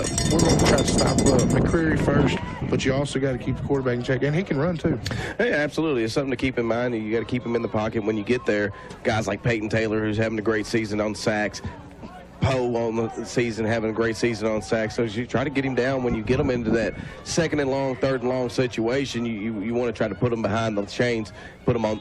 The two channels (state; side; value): identical; both; correlation 1.00